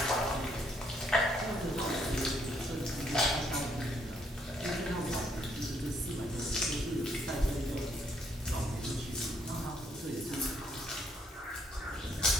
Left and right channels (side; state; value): both; normal; correlation 0.70